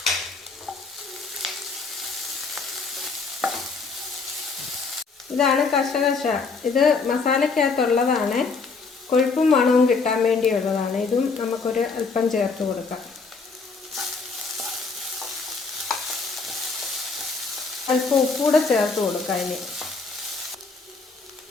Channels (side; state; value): right; quieter; 4.5 dB